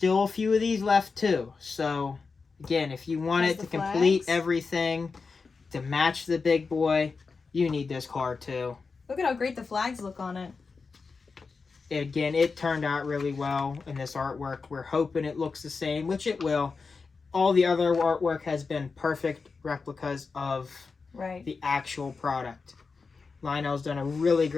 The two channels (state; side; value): quieter; right; 4.7 dB